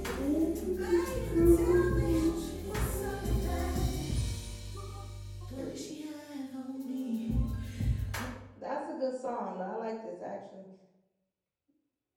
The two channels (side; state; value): both; identical; correlation 1.00